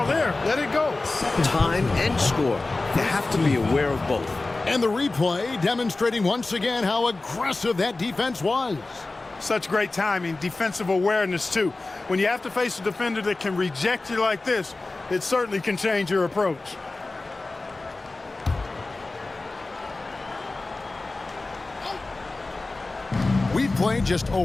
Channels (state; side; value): quieter; right; 3.3 dB